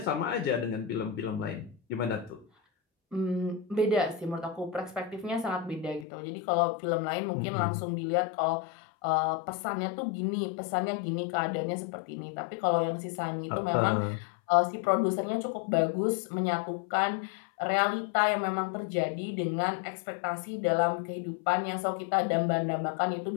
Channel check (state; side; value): drops out; right; at 6.1 s